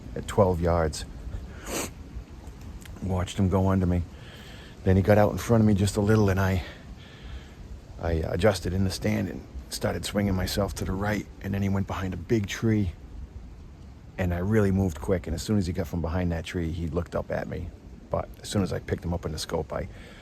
at 12 yards. Watched him go under me. Then he got out in front of me just a little, and I adjusted in the stand and started swinging myself to the right, and then he went behind a big tree, and I really moved quick, and as soon as he got from behind that tree, he looked up at me. But as soon as I picked him up in the scope, I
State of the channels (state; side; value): identical; both; correlation 1.00